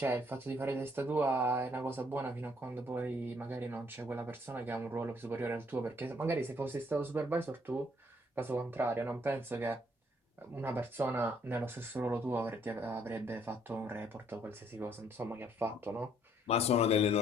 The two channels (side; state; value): both; normal; correlation 0.66